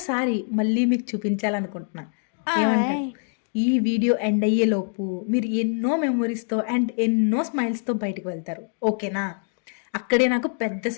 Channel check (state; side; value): silent; right; 62 dB below the other